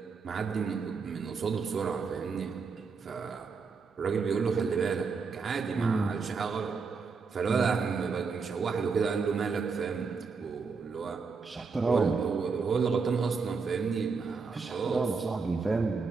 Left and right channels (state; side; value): quieter; left; 5.0 dB